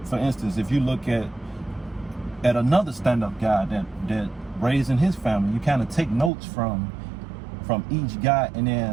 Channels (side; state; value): left; drops out; at 6.3 s